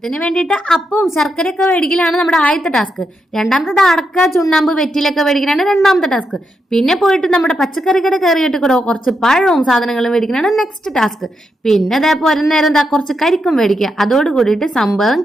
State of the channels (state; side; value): normal; both; correlation 0.83